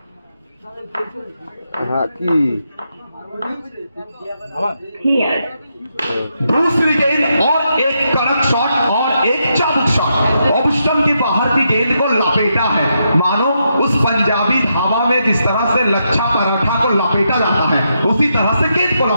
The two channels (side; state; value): both; inverted; correlation -0.82